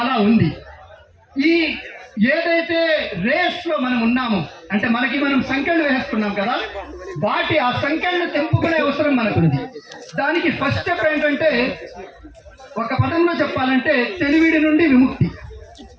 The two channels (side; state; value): both; identical; correlation 1.00